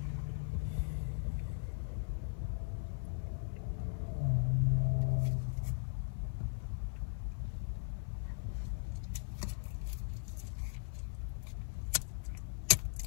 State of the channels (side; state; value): right; silent; 52 dB below the other